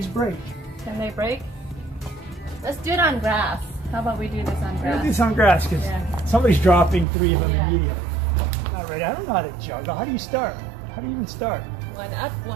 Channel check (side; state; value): left; drops out; at 7.1 s